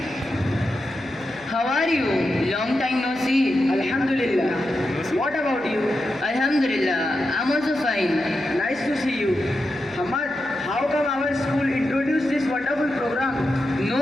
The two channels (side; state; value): right; noise; hum, 25 dB below the sound